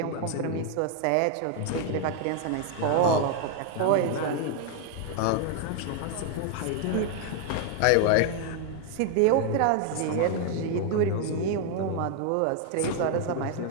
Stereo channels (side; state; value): both; different; correlation 0.00